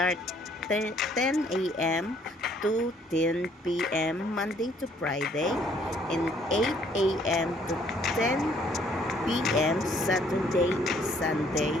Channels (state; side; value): normal; both; correlation 0.63